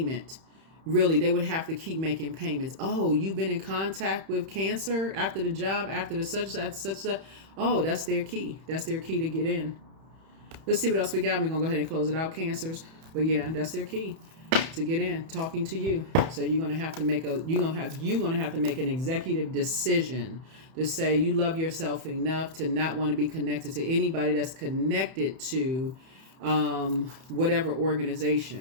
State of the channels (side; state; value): left; late; 31 ms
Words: Really, they would have to keep making payments. Oh, you've been in contact with Cancer after the job, after the such. Oh, that's their key. That's their key to get in. Let's see what else we got. We're going to go ahead and close it out, Cancers. But yeah, that's their key to get in, talking to you. So you're going to have to make an executive decision to say you love yourself enough to not want to be connected to anybody that's connected to whatever